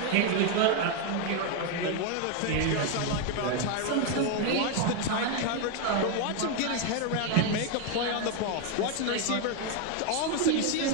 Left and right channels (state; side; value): different; both; correlation 0.01